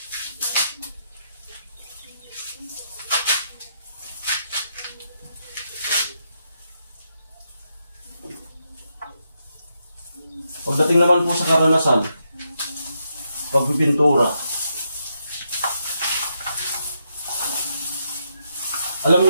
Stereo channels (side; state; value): both; inverted; correlation -0.81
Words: Pagdating naman po sa karanasan, pagpipintura, alam